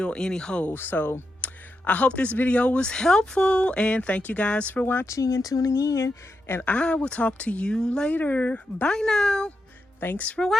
any holes. So I hope this video was helpful, and thank you guys for watching and tuning in, and I will talk to you later. Bye now. Thanks for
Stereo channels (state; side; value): normal; both; correlation 0.86